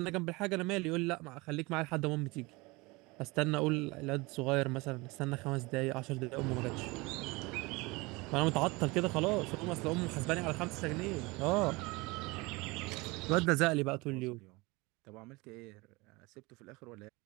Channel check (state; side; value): quieter; left; 24.3 dB